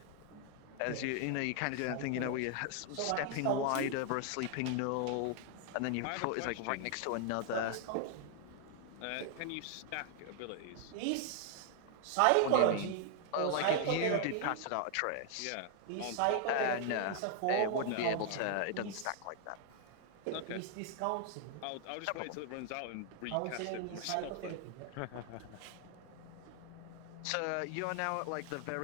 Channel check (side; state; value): both; different; correlation 0.00